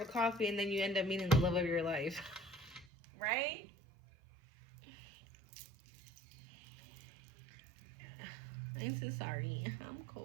a coffee and then you end up meeting the love of your life. Right? I'm so sorry. I'm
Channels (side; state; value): left; drops out; at 2.9 s